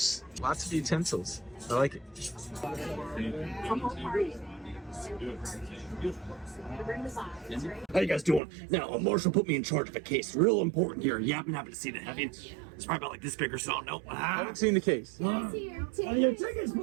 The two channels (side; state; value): left; drops out; at 8.4 s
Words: Lots of utensils. I like it. How you guys doing? Now, a marshal put me in charge of a case. Real important here. You happen to see that, have you? It's probably about like this big or so. No. I haven't seen the case. Your tickets,